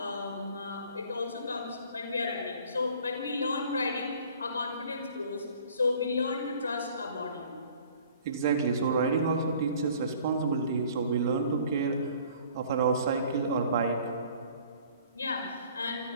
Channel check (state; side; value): inverted; both; correlation -0.52